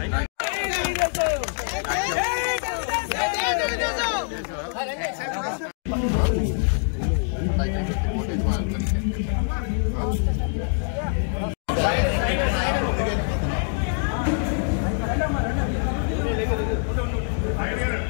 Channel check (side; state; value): right; silent; 62 dB below the other